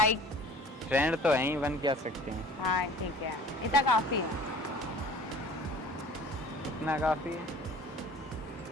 फ्रेंड तो हैं ही, बन क्या सकते हैं। हाँ ठीक है, इतना काफी है। इतना काफी है?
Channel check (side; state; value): both; normal; correlation 0.46